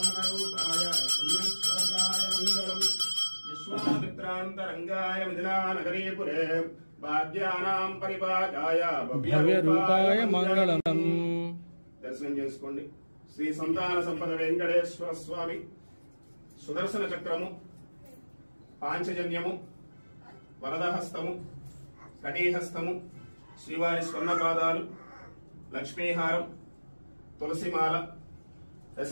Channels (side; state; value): both; inverted; correlation -1.00